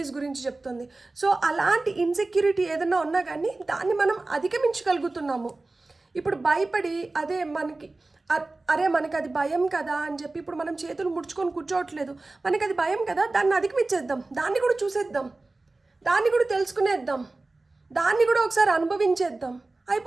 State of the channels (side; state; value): left; quieter; 3.2 dB